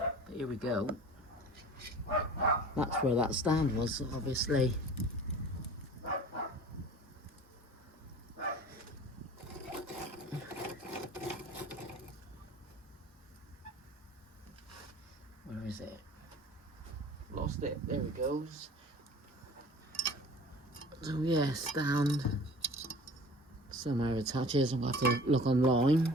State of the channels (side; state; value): both; normal; correlation 0.43